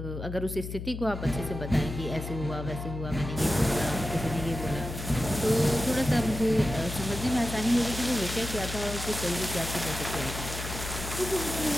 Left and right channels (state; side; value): noise; left; hum, 7 dB below the sound